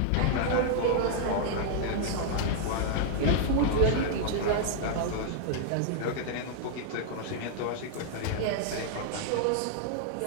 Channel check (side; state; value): both; different; correlation -0.01